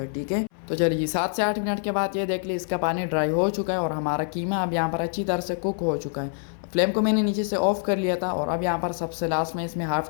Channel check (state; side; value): silent; right; 61 dB below the other